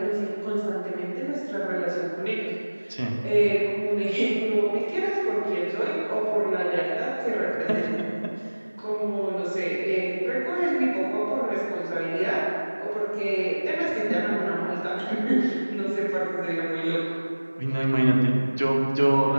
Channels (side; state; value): both; inverted; correlation -1.00